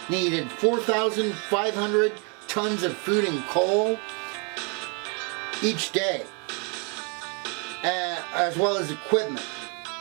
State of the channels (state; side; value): quieter; left; 35.9 dB